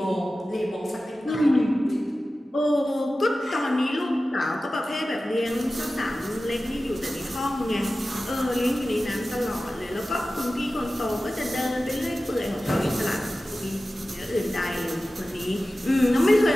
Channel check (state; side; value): normal; both; correlation 0.95